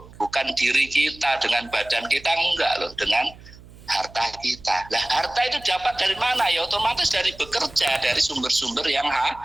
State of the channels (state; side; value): noise; right; hum, 20 dB below the sound